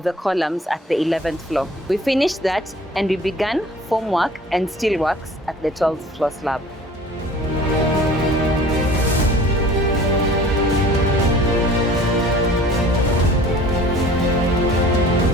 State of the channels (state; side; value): normal; both; correlation 0.48